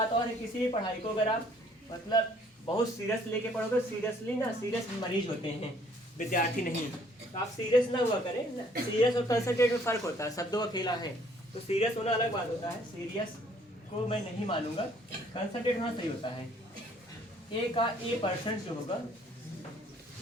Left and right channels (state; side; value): normal; both; correlation 0.61